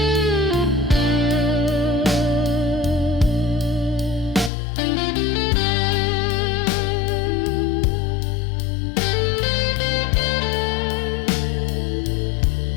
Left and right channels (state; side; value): drops out; right; at 4.5 s